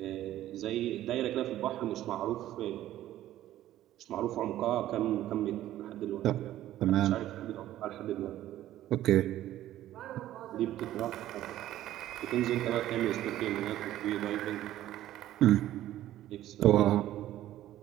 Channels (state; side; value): quieter; left; 13.5 dB